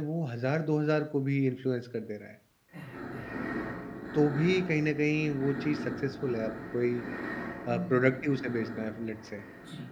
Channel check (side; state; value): both; identical; correlation 1.00